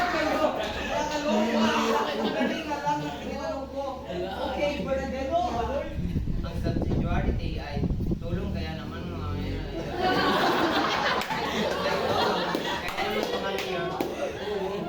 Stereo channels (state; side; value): identical; both; correlation 1.00